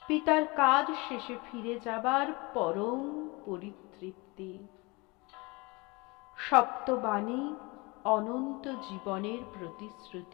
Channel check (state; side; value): quieter; right; 26.0 dB